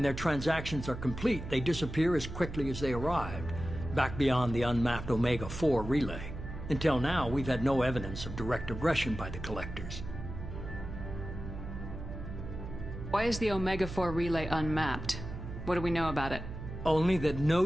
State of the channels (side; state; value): right; noise; hum, 9 dB below the sound